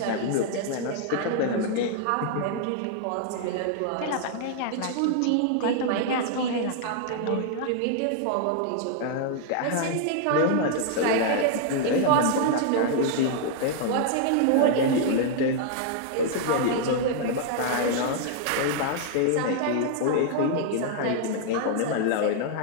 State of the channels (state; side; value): different; both; correlation -0.01